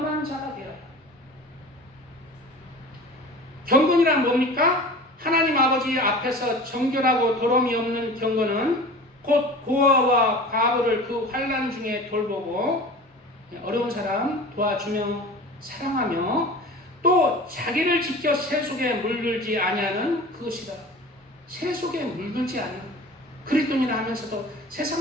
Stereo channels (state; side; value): normal; both; correlation 0.38